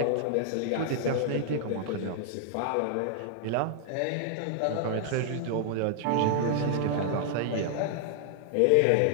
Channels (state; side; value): different; both; correlation -0.01